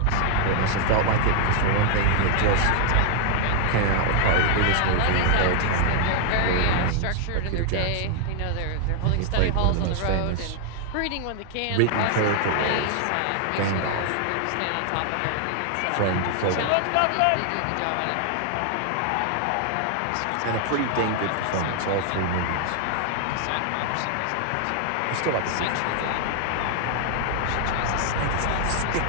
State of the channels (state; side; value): different; both; correlation 0.00